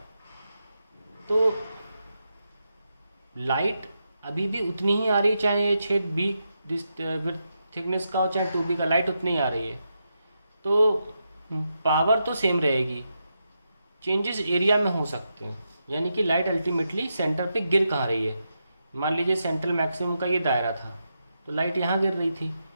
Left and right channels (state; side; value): inverted; both; correlation -0.85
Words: तो लाइट अभी भी उतनी ही आ रही है, चाहे ये छेद बी विथ थिकनेस का हो चाहे 2b का, लाइट उतनी ही आ रही है। तो पावर तो सेम रहेगी, चेंजेस एरिया में हो सकते हैं। यानी कि लाइट अल्टीमेटली सेंटर पे गिर कहाँ रही है। मान लीजिए सेंट्रल मैक्सिमम का ये दायरा था, तो लाइट यहाँ गिर रही थी,